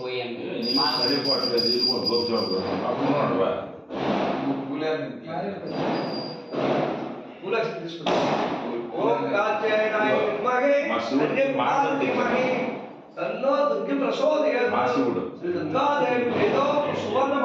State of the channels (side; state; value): both; identical; correlation 1.00